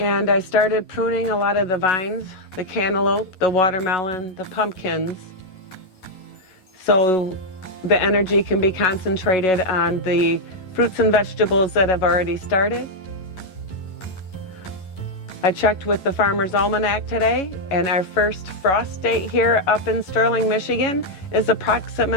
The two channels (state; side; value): late; right; 11 ms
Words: I started pruning a lot of the vines, the cantaloupe, the watermelon, the pumpkins, so the energy can be concentrated on the fruits and vegetables that have already started. I checked with the Farmer's Almanac today, and our first frost date here up in Sterling, Michigan is